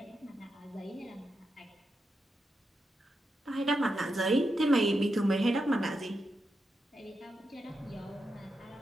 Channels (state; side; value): normal; both; correlation 0.86